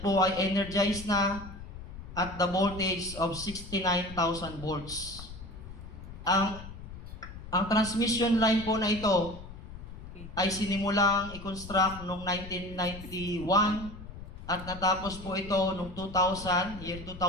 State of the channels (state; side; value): noise; left; rumble, 13 dB below the sound